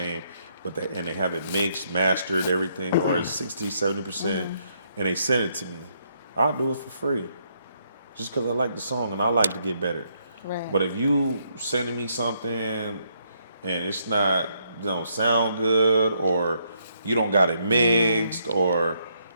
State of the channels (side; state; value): both; inverted; correlation -0.74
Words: but they have it mixed, mastered, everything, or it's 60, 70%, and they send it to me. I'll do it for free, just because I like the song and I like to get better. Right. But if you sending me something and it's not, don't sound good, or you don't got it mixed, or